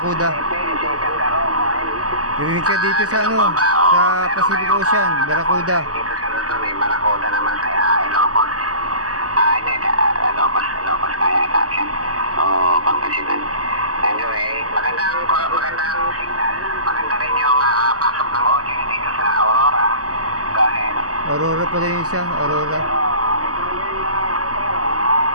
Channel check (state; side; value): late; left; 0.67 ms